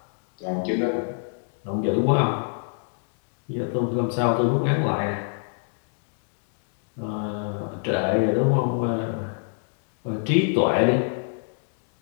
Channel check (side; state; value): right; silent; digital silence